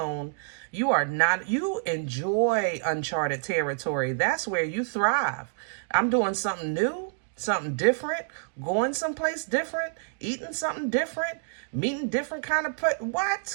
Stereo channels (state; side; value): silent; left; digital silence